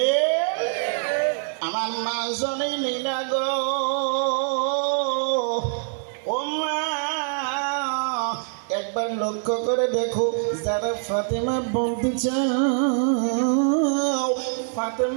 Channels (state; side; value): silent; left; digital silence